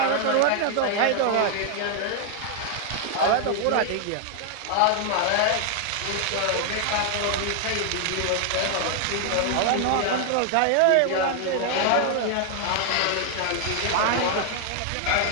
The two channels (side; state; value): both; different; correlation 0.00